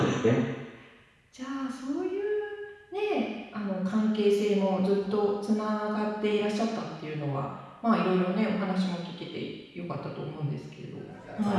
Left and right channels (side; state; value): both; identical; correlation 1.00